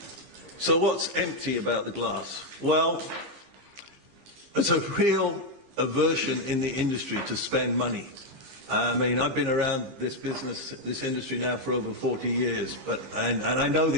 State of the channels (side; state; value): left; late; 15 ms